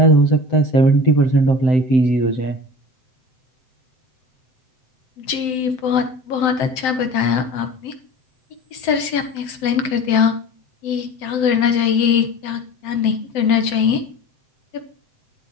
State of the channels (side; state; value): right; late; 7.8 ms